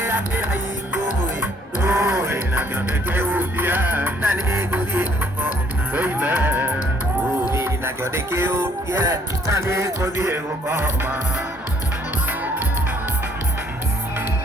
kĩraingũĩ na kĩonde kĩhutia na nĩngũthiĩ gũkoma na kĩonde kĩhutia na nĩngũthiĩ gũkoma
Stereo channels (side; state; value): both; normal; correlation 0.62